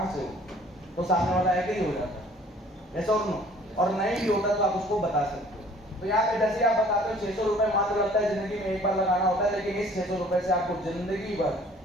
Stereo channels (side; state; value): both; normal; correlation 0.54